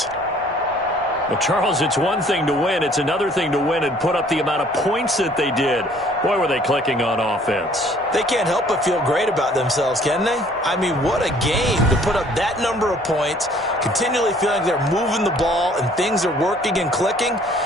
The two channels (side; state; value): both; normal; correlation 0.57